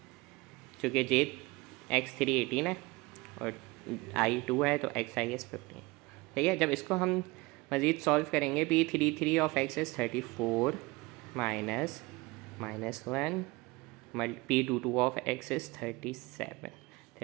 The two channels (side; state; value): left; quieter; 23.1 dB